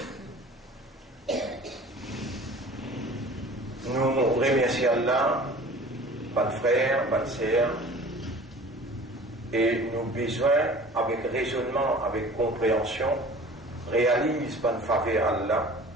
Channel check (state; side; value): normal; both; correlation 0.44